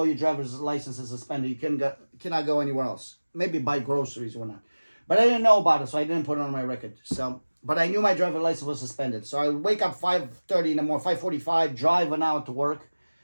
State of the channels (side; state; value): both; inverted; correlation -1.00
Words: your driver's license is suspended, you cannot go anywhere else. Maybe buy groceries or not. But I didn't know about it, so I didn't put it on my record. So, but I knew my driver's license was suspended. So I would wake up 5:30 in the morning, 5:45, drive an hour to work